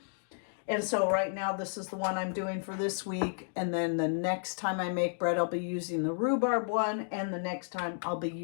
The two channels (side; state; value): right; silent; digital silence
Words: And so right now this is the one I'm doing for this week, and then the next time I make bread I'll be using the rhubarb one, and the next time I'll be